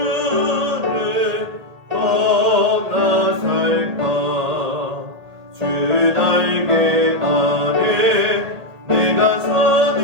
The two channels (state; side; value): late; left; 1.8 ms